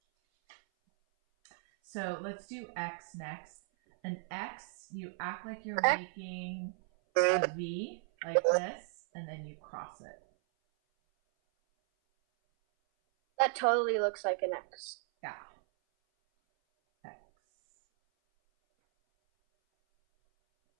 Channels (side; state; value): left; silent; 54 dB below the other